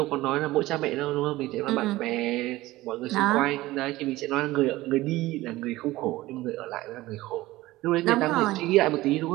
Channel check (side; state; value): left; quieter; 17.9 dB